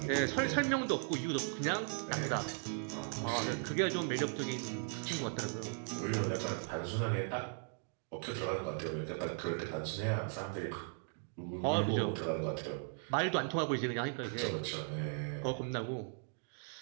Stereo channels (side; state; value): left; silent; 53 dB below the other